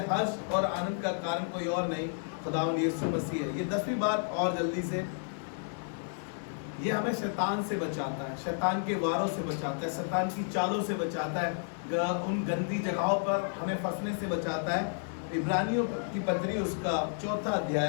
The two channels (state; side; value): silent; right; 57 dB below the other